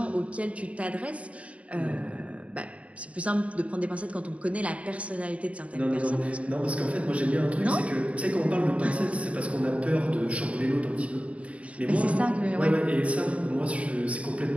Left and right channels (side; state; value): left; late; 0.065 ms